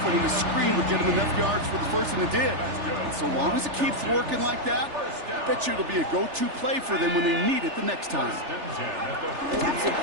the screen would get him enough yards for the first, and it did. And so long as it keeps working like that, I bet you it'll be a go-to play for them when they need it the next time. Taps it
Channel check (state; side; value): late; left; 3.4 ms